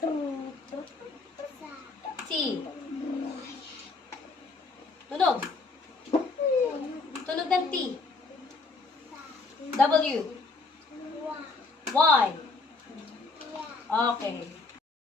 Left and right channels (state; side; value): quieter; right; 3.8 dB